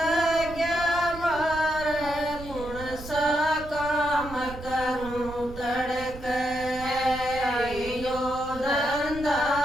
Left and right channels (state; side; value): noise; right; rumble, 13 dB below the sound